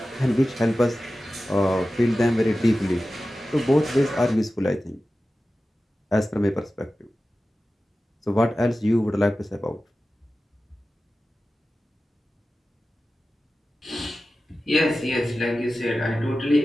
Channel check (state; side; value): normal; both; correlation 0.95